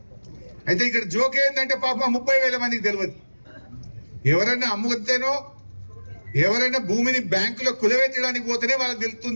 అయితే ఇక్కడ జోక్ ఏంటంటే పాపం 30,000 మందికి తెలియదు. ఎవరన్నా అమ్ముతేనో, ఎవరైనా భూమిని బ్యాంకులో కులవెత్తడానికి పోతేనే వాళ్ళకి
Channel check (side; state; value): both; inverted; correlation -1.00